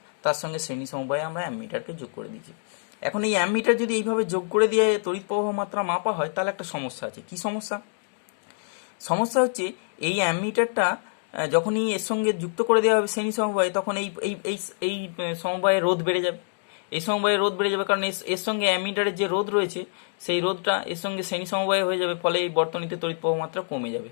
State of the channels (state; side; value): silent; right; digital silence